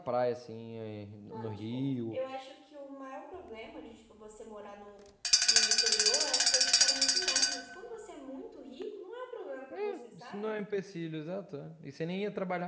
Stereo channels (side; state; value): both; identical; correlation 1.00